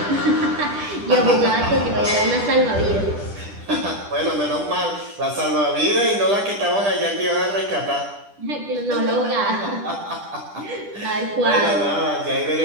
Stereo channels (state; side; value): late; left; 10 ms